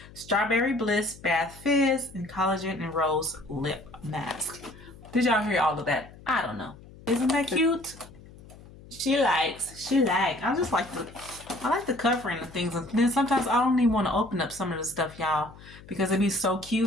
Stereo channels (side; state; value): left; noise; hum, 20 dB below the sound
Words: Strawberry bliss bath fizz and collagen and rose lip mask. Did y'all hear all of that? I don't know. Isn't that cute? She likes. I like the covering of things. And then sometimes I don't even want to open up some of the stuff, y'all, because it'd be so